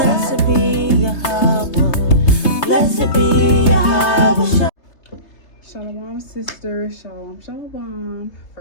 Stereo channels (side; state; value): right; late; 3.2 ms